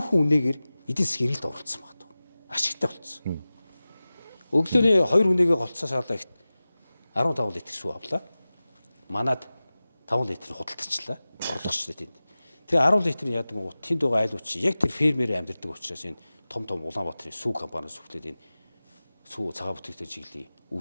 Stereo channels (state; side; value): inverted; both; correlation -0.97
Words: хүн үнэгээр эдийн засгийн гэрэлд оролцсон байна. Ашигтай болцсон. Өглөөний 2 үнэгээ голцоо саалаа ихт 15 литр сүү авлаа. Манад 5 литр худалдчихлаа. Орлогочлаа тэнд. Тэгээ 10 литр нь яадаг гоо тэнд байгаа айлууч яг тэр фермерээр амьдардаг учраас энэ том Улаанбаатарын сүү компаниас хүлээд энэ сүү цагаан бүтээгдэхүүн чиглэлийн